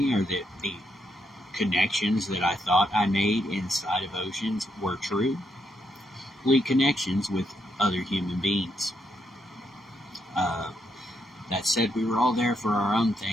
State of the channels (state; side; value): normal; both; correlation 0.78